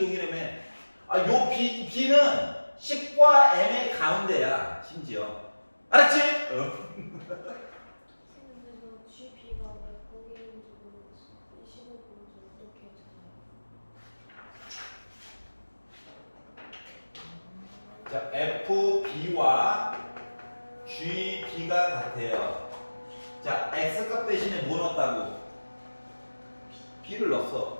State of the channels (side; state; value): both; inverted; correlation -1.00